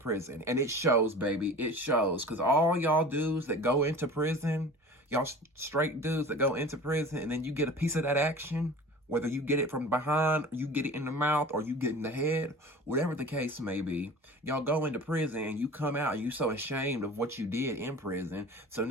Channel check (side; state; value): both; normal; correlation 0.40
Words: And it shows, baby. It shows. Because all y'all dudes that go into prison, y'all straight dudes that go into prison, and then you get a piece of that action, whether you get it from behind, or you get it in the mouth, or you get in the head, whatever the case may be, y'all go into prison and you come out and you so ashamed of what you did in prison. So